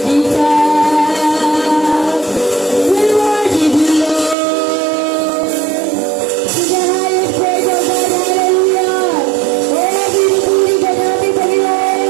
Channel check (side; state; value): left; drops out; at 4.4 s